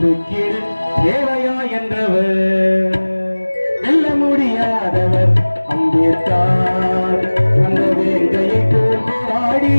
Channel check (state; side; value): inverted; both; correlation -1.00